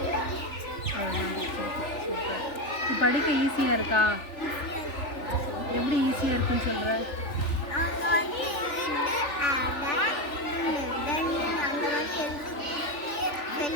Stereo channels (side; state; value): right; late; 3.4 ms